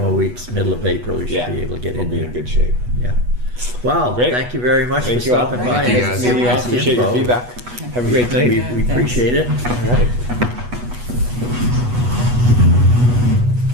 weeks, middle of April, you should Yeah, be able to get we'll in be there. in good shape. Yeah. Well, Great. thank you very much Thank for you all. stopping by. Thank you, and guys. giving Meeting you all. us the Appreciate your info. feedback. Have a great We night. appreciate it. All right.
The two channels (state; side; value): late; left; 8.2 ms